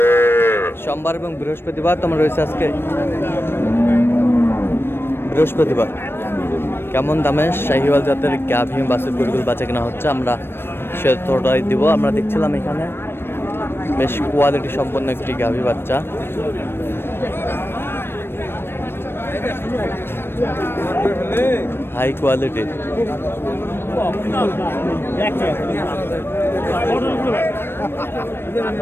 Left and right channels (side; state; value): right; late; 0.11 ms